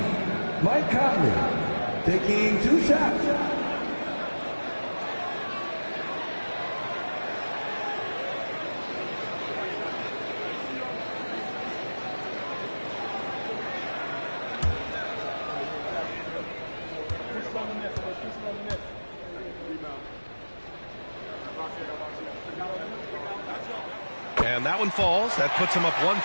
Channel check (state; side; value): inverted; both; correlation -1.00